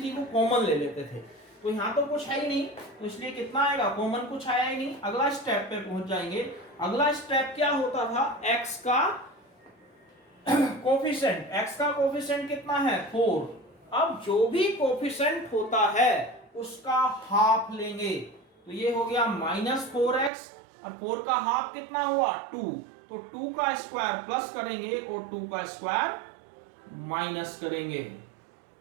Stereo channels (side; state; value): left; drops out; at 20.3 s